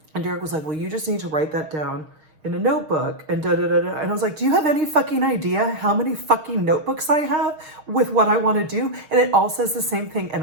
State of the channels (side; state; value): left; late; 6.4 ms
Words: And Derek was like, well, you just need to write that down in a notebook and da-da-da-da. And I was like, do you have any fucking idea how many fucking notebooks I have with what I want to do? And it all says the same thing